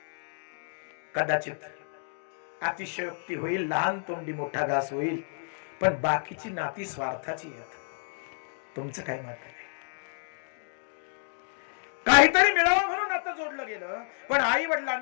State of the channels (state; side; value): silent; right; digital silence